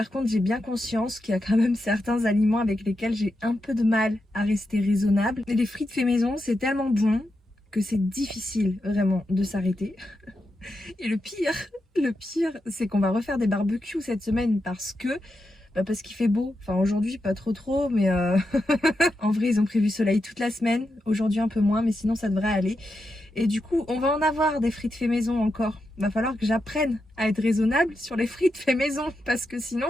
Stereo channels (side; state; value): both; normal; correlation 0.87